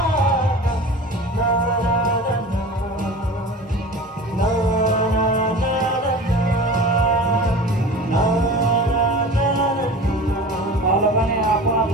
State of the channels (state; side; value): normal; both; correlation 0.37